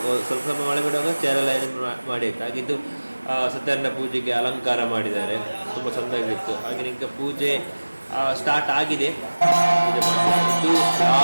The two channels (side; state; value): both; inverted; correlation -1.00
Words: ಸ್ವಲ್ಪ ಮಳೆ ಬಿಡುವಾಗ ಚೇರೆಲ್ಲ ಮಾಡಿ ಆಯಿತು. ಹಾಗೆ ಇದು ಸತ್ಯನಾರಾಯಣ ಪೂಜೆಗೆ ಅಲಂಕಾರ ಮಾಡಿದ್ದಾರೆ, ತುಂಬ ಚೆಂದಾಗಿತ್ತು. ಹಾಗೆ ಈಗ ಪೂಜೆ ಸ್ಟಾರ್ಟ್ ಆಗಿದೆ. ಇದು